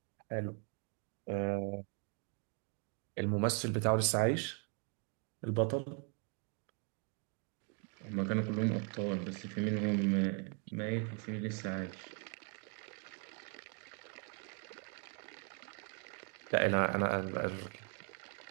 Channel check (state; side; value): quieter; left; 39.4 dB